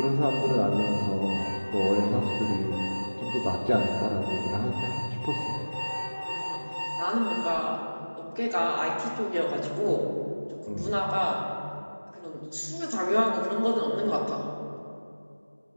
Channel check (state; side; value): inverted; both; correlation -1.00